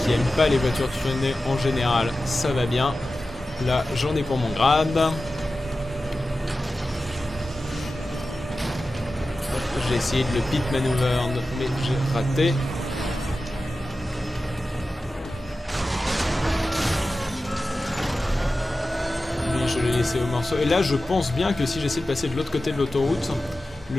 aime pas les voitures tunées en général, ça va bien. Là, j'en ai pour mon grade. J'ai essayé de le pit maneuver, mais j'ai raté. Lui, je l'ai laissé au morceau. Et là, je pense bien que si j'essaie de passer de l'autre côté de l'autoroute,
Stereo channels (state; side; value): normal; both; correlation 0.94